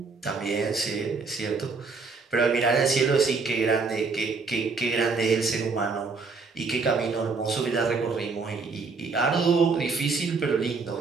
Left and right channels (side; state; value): left; quieter; 4.4 dB